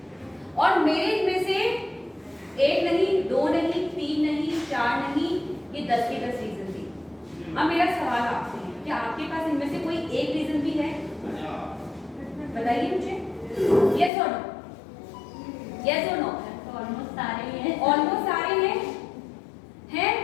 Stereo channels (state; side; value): drops out; right; at 14.1 s